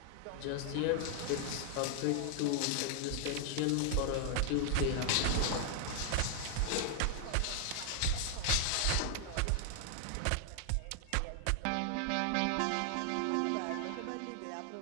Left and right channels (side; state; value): both; different; correlation 0.00